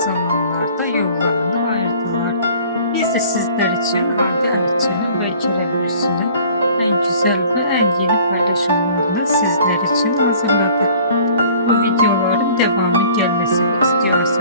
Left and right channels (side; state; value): both; inverted; correlation -0.51